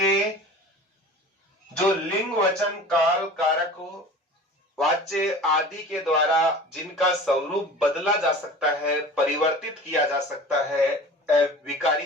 जो लिंग, वचन, काल, कारक, वाच्य आदि के द्वारा जिनका स्वरूप बदला जा सकता है, परिवर्तित किया जा सकता है,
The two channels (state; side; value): normal; both; correlation 0.40